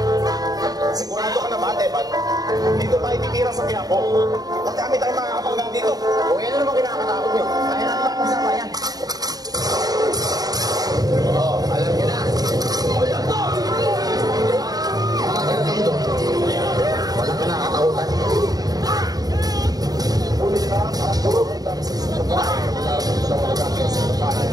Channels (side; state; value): left; late; 0.18 ms